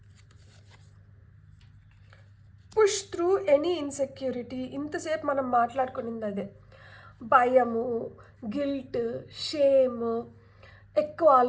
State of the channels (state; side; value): identical; both; correlation 1.00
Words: Push through any insecurity. ఇంతసేపు మనం మాట్లాడుకునింది అదే. భయము, గిల్ట్, షేమ్, ఎక్కువ